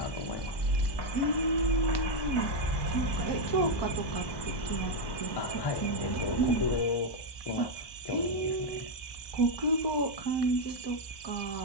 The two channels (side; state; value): right; late; 1.1 ms